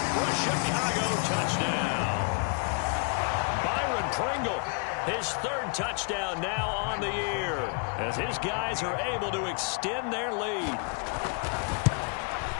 for a Chicago touchdown. Byron Pringle. His 3rd touchdown now on the year as his guys are able to extend their lead.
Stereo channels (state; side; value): quieter; right; 37.1 dB